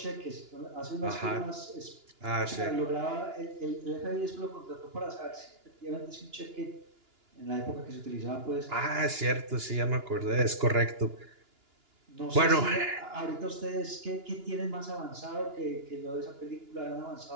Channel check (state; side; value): late; left; 2.9 ms